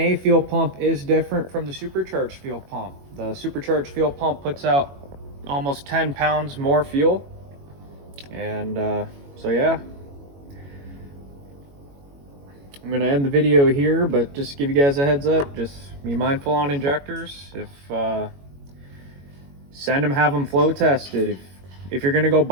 fuel pump is different from the supercharged fuel pump. The supercharged fuel pump puts out almost 10 pounds more fuel. And so yeah. I'm going to end the video here, but just give you guys a heads up. Just be mindful on injectors. If send them, have them flow tested. If you're going to go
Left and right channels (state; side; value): late; left; 21 ms